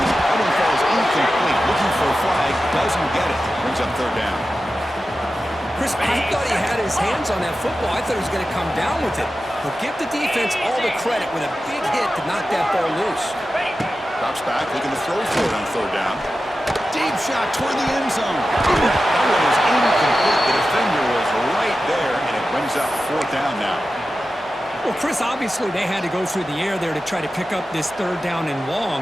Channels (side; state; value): both; normal; correlation 0.93